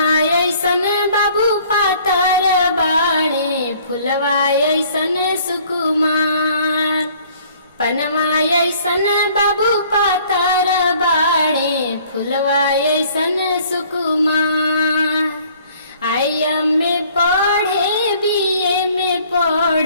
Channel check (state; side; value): inverted; both; correlation -0.57